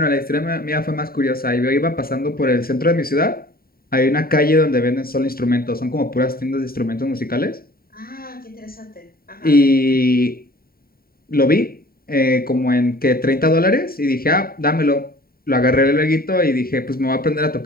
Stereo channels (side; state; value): right; late; 0.43 ms